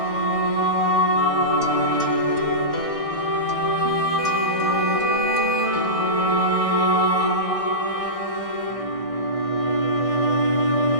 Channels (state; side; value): late; right; 1.6 ms